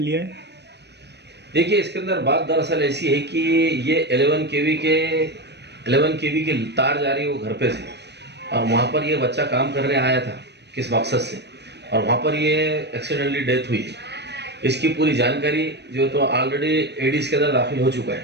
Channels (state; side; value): late; left; 0.50 ms